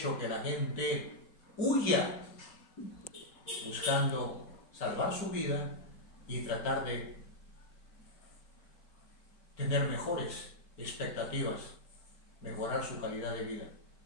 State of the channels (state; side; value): late; right; 4.5 ms